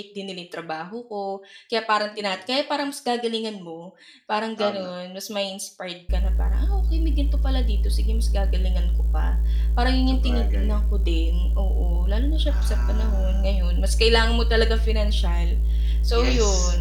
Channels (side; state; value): both; identical; correlation 1.00